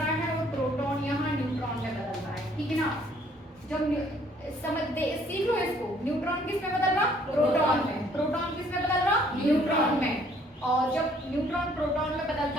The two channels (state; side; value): normal; both; correlation 0.62